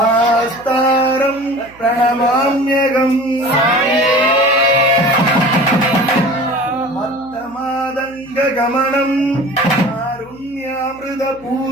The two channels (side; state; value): right; noise; hum, 26 dB below the sound